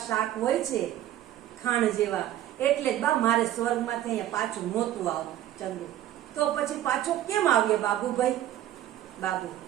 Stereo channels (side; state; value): left; quieter; 12.8 dB